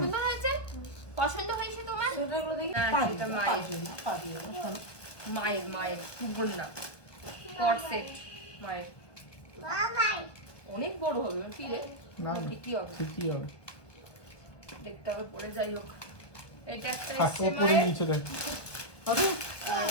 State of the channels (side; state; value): right; late; 1.1 ms